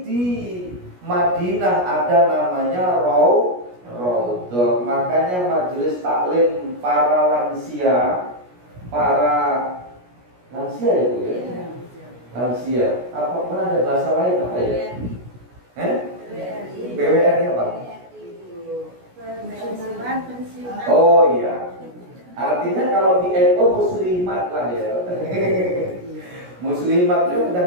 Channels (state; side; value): late; left; 17 ms